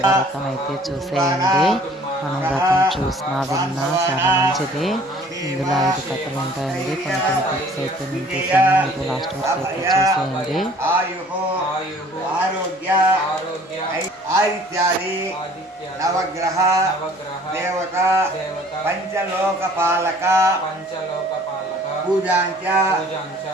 వ్రతం అయితే చూసేయండి. మనం వ్రతం చూసినా విన్నా చాలా మంచిది. ఇందులో 5 కథలు ఉంటాయండి. కొన్ని టిప్స్ అయితే నేను చూసాను, మీరు లాస్ట్ వరకు అయితే చూసేయండి. ఆదిత్యాది నవగ్రహ దేవత పంచలోకపాలక పూజాంచ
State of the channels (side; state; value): both; normal; correlation 0.53